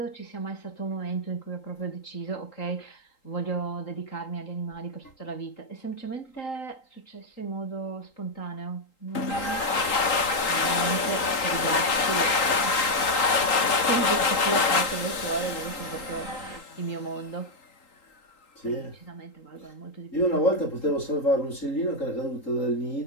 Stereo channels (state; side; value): late; right; 3.8 ms